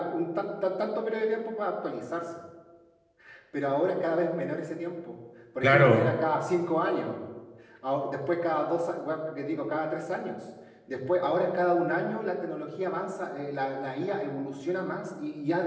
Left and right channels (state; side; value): identical; both; correlation 1.00